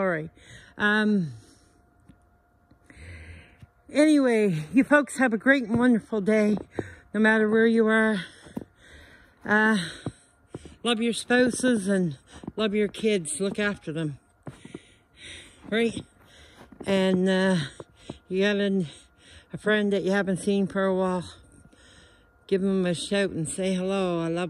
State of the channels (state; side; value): identical; both; correlation 1.00